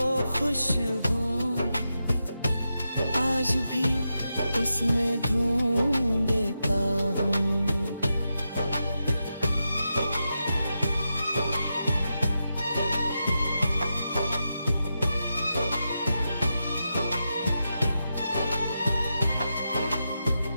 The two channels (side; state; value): both; inverted; correlation -0.88